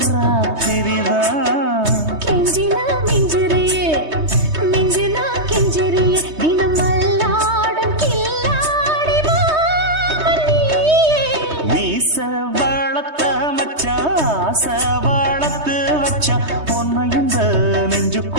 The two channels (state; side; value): late; left; 3.2 ms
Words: ராத்திரிதான். கெஞ்சினா மிஞ்சிறியே, மிஞ்சினா கெஞ்சிறியே, தினம் மல்லாடும் கில்லாடி மாமன் நீயே. மீச வளர்த்த மச்சான் ஆசை வளர்த்து வச்சான் உன்னை இந்த